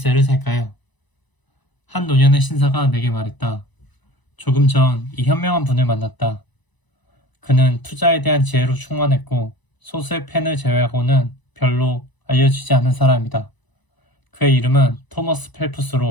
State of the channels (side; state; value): right; late; 1.0 ms